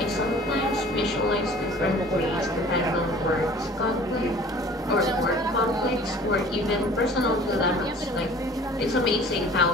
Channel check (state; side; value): normal; both; correlation 0.48